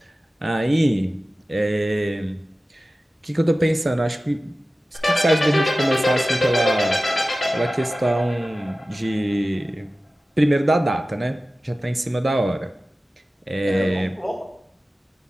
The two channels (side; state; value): both; normal; correlation 0.96